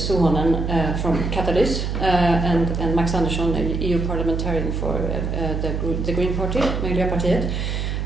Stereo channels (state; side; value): noise; right; hum, 2 dB below the sound